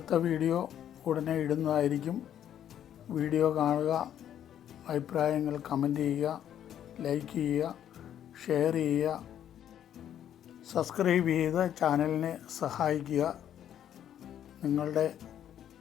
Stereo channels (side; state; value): right; quieter; 10.3 dB